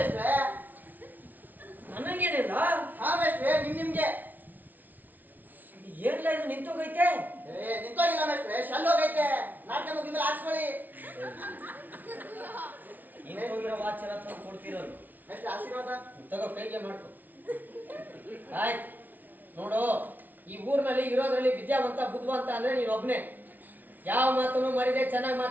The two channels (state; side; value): late; left; 0.082 ms